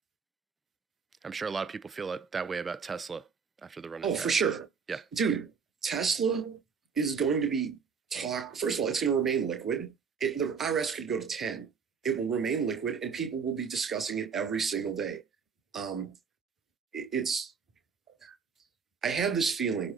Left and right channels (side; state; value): left; quieter; 6.1 dB